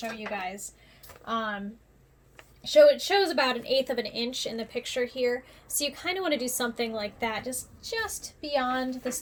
you guys. It shows about 1/8 of an inch in the picture here. So you kind of want to do something like that, just beyond the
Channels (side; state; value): both; identical; correlation 1.00